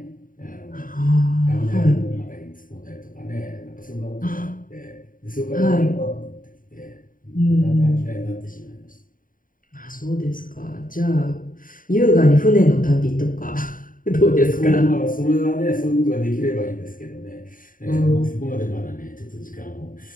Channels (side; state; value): right; late; 0.40 ms